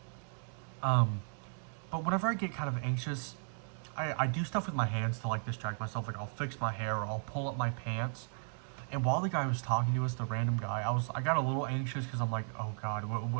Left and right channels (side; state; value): left; silent; 54 dB below the other